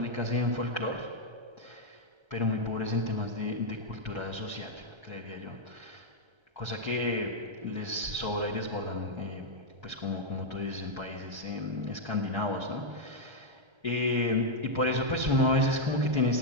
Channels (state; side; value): late; left; 1.3 ms